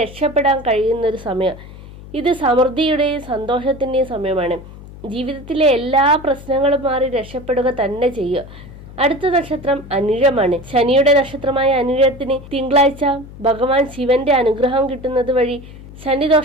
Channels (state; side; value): noise; left; hum, 17 dB below the sound